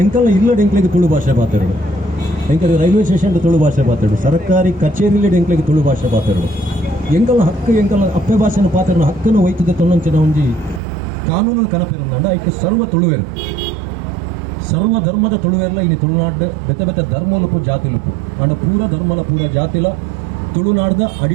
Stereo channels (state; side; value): drops out; left; at 10.8 s